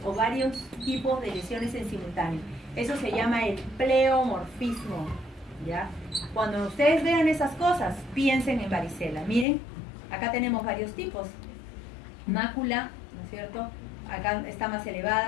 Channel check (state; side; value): drops out; right; at 9.5 s